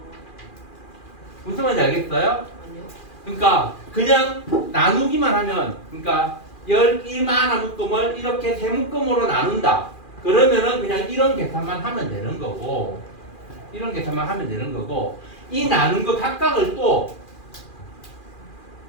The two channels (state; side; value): late; right; 2.4 ms